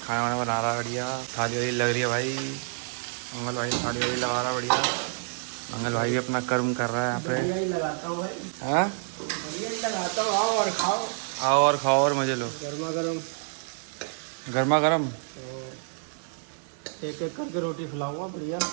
वाना बना रहा है बढ़िया। थाली वाली लग रही है भाई, मंगल भाई थाली वाली लगा रहा है बढ़िया। मंगल भाई भी अपना कर्म कर रहा है यहाँ पे। बढ़िया ही लगाता हूँ भाई, हाँ बढ़िया ही लगाता हूँ। आओ और खाओ, आओ और खाओ और मजे लो। गर्मा गर्म। गर्मा गर्म एक एक करके रोटी खिलाऊंगा, बढ़िया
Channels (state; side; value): silent; left; 59 dB below the other